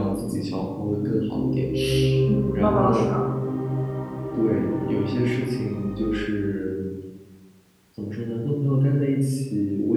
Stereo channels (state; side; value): identical; both; correlation 1.00